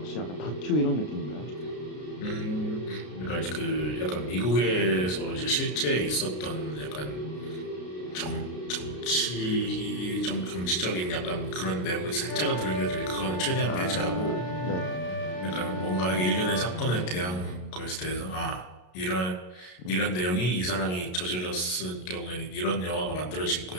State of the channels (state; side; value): late; right; 33 ms